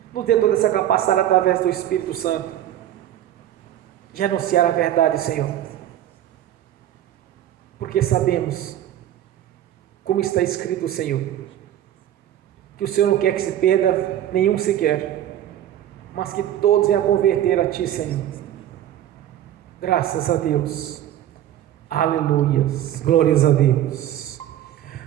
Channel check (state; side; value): quieter; left; 11.9 dB